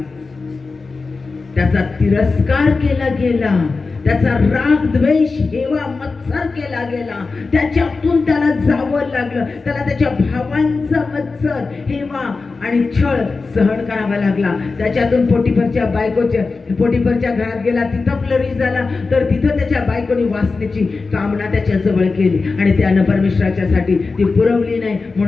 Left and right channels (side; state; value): right; quieter; 4.1 dB